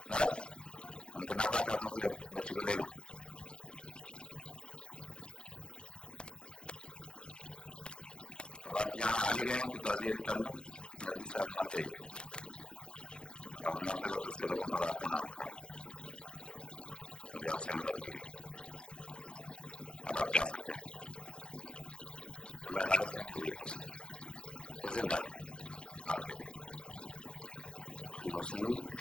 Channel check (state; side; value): late; right; 0.051 ms